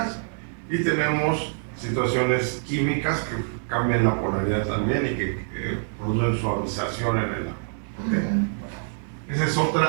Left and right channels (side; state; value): left; silent; digital silence